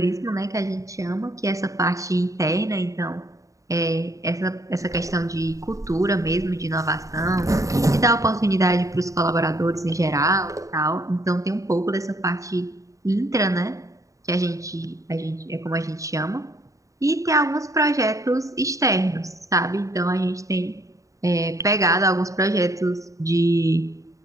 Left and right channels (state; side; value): late; left; 0.16 ms